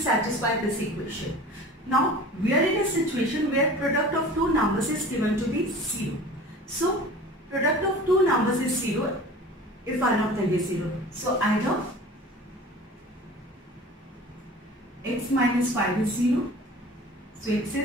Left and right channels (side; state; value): both; normal; correlation 0.40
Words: satisfy this equation. Now we are in a situation where product of 2 numbers is given to be 0. So product of 2 numbers is 0 if one of them is 0. So either x minus 5 is 0, so x